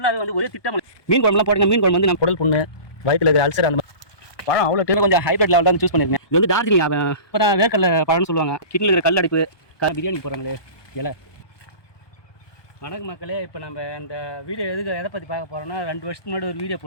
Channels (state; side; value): late; right; 1.2 ms